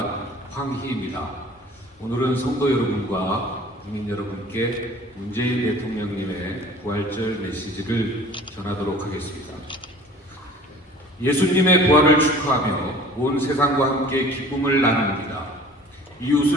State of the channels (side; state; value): both; normal; correlation 0.47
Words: 황희입니다. 오늘은 성도 여러분과 국민 여러분께 문재인 대통령님의 부활절 메시지를 전하도록 하겠습니다. 예수님의 부활을 축하하며 온 세상과 함께 기쁨을 나눕니다.